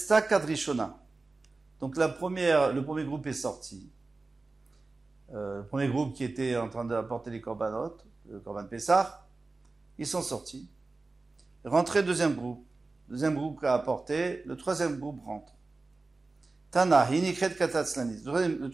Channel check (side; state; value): left; quieter; 3.5 dB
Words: Kadrishona. Donc le premier groupe est sorti. Le premier groupe qui était en train d'apporter les korbanot, le korban Pessah, ils sont sortis. Rentré deuxième groupe qui a apporté, le troisième groupe rentre. Tana, Hinikret Katatzlanis. Le